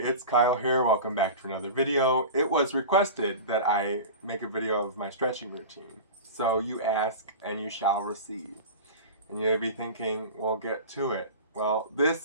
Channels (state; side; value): inverted; both; correlation -0.31